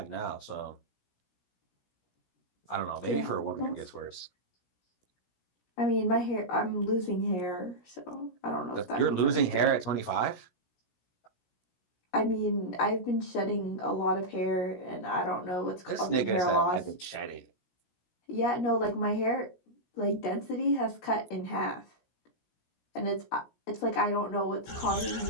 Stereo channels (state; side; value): late; right; 17 ms